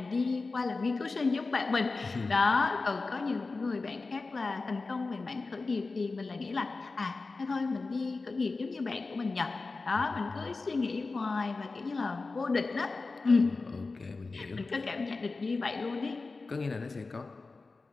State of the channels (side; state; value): right; quieter; 3.8 dB